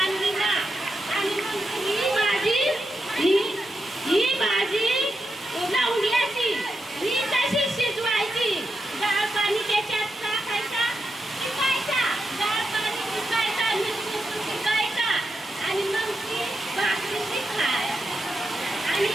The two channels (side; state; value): both; normal; correlation 0.86